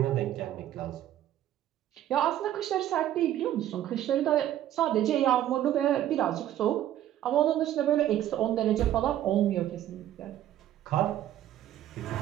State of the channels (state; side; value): quieter; left; 12.3 dB